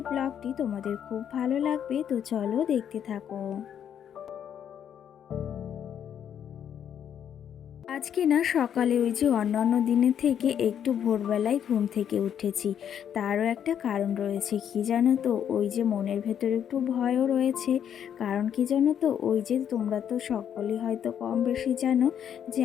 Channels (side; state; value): right; quieter; 9.0 dB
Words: ব্লগটি তোমাদের খুব ভালো লাগবে, তো চলো দেখতে থাকো। আজকে না সকালে ওই যে অন্যান্য দিনের থেকে একটু ভোরবেলায় ঘুম থেকে উঠেছি। তারও একটা কারণ রয়েছে, কি জানো তো, ওই যে মনের ভেতরে একটু ভয়ও রয়েছে। কারণ কি জানো তো, ওই যে তোমরা তো সকলেই হয়তো কম বেশি জানো যে